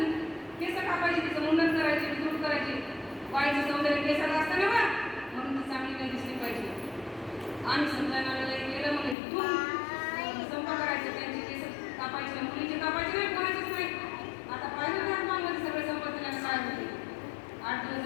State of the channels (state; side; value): drops out; right; at 9.2 s